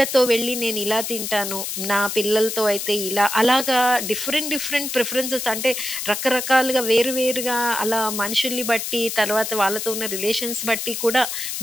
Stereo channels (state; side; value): noise; left; hiss, 4 dB below the sound